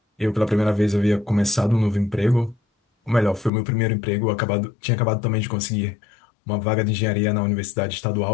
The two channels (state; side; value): drops out; right; at 3.5 s